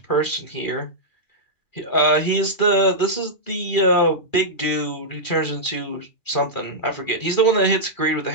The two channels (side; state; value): right; late; 2.4 ms